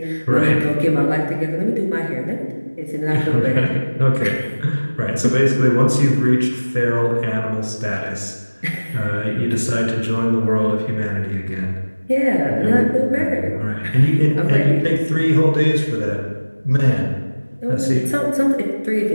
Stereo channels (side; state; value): both; inverted; correlation -1.00